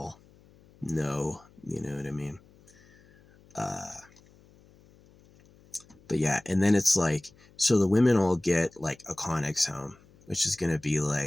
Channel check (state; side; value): noise; left; hum, 28 dB below the sound